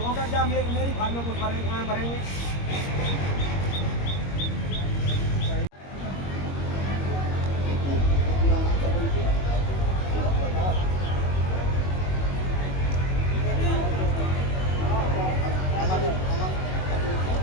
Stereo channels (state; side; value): late; right; 21 ms